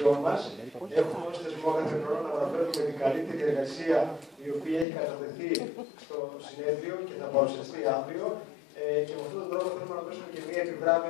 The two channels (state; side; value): drops out; right; at 4.9 s